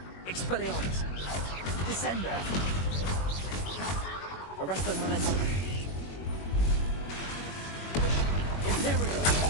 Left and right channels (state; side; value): late; right; 21 ms